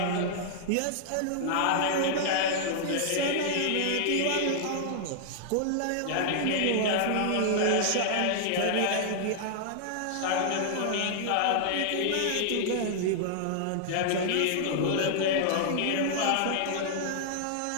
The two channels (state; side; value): different; both; correlation -0.01